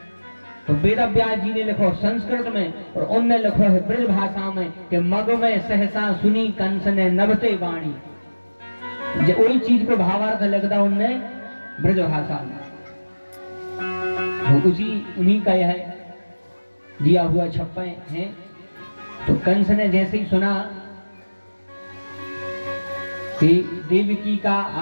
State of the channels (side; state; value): both; inverted; correlation -1.00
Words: तो वेदव्यास जी ने लिखो संस्कृत में और उनने लिखो है ब्रज भाषा में कि मग में सहसा सुनी कंस ने नभते वाणी। वही चीज को भावार्थ लगता उनने ब्रज भाषा में, वो उसी उन्हीं का यह दिया हुआ छप्पे हैं। तो कंस ने जैसे ही सुना कि देवकी का